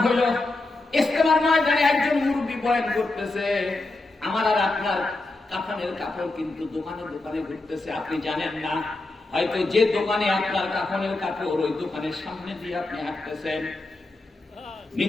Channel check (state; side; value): quieter; right; 3.0 dB